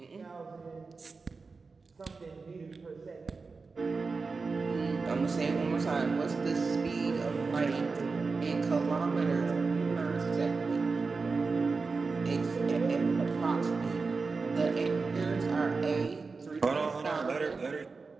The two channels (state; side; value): quieter; left; 4.3 dB